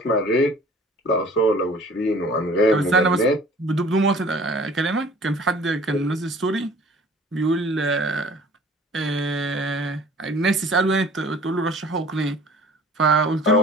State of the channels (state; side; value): normal; both; correlation 0.49